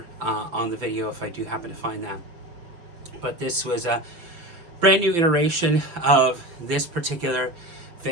on the video if I do happen to find that. But this was a brand new iteration of this particular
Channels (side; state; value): left; late; 5.9 ms